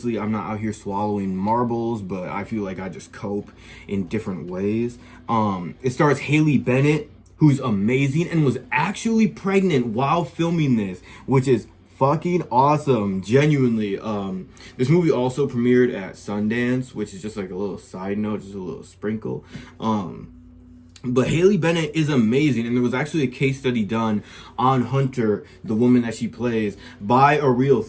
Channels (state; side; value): identical; both; correlation 1.00